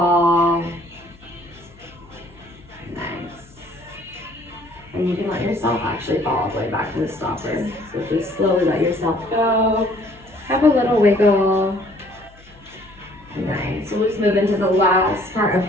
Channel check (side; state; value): left; noise; hum, 25 dB below the sound